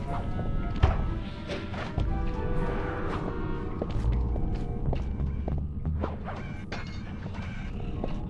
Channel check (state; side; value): identical; both; correlation 1.00